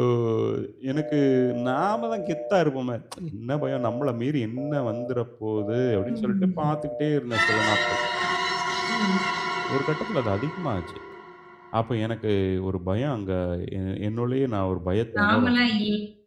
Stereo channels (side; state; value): both; identical; correlation 1.00